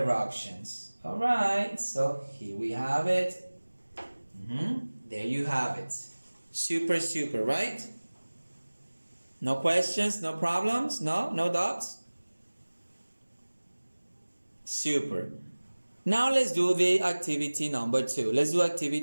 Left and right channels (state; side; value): inverted; both; correlation -1.00